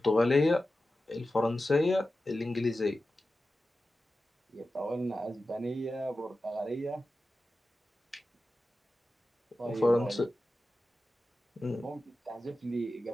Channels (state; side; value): normal; both; correlation 0.94